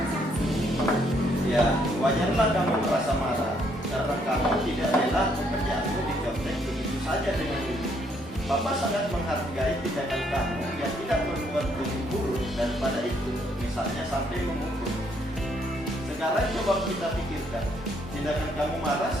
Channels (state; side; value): normal; both; correlation 0.70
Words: Ya, wajarlah kamu merasa marah karena kamu tidak rela pekerjaanmu dicontek begitu saja dengan Wiwi. Bapak sangat menghargai tindakan kamu yang tidak berbuat buru-buru daripada itu, misalnya sampai memukul. Sekarang coba kita pikirkan, tindakan kamu marah